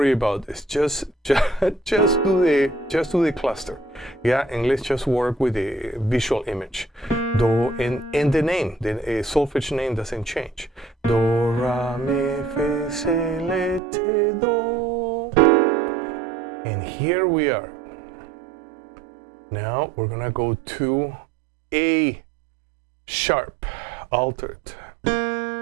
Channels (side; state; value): left; drops out; at 13.8 s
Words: about this. Just do the cluster. Yeah, and let's just work with the visual image. Do, and the name, the solfege name doesn't change. Do, ra, mi, fe, se, le, te, do. And here we are. Now we're gonna go to A sharp altered.